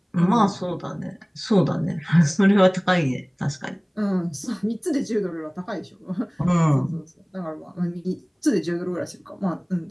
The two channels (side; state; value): both; identical; correlation 1.00